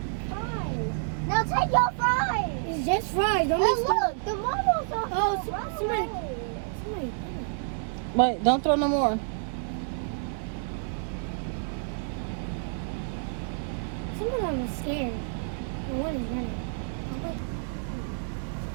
Fries. Now take your fries. It's just fries. Don't Hey, be look, the mama's on. Oh, Run somebody- away. Somebody. Wait, don't throw no more. Some of them are scared. And one is running.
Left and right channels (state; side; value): silent; left; digital silence